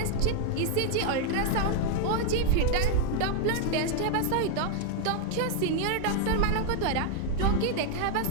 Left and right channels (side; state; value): both; different; correlation 0.00